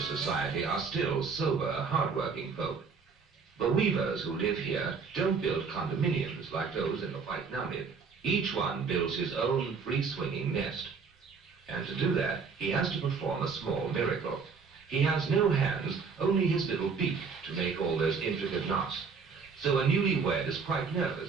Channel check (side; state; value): left; quieter; 5.3 dB